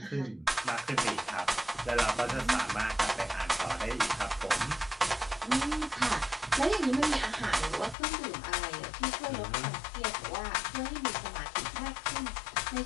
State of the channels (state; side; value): drops out; right; at 8.0 s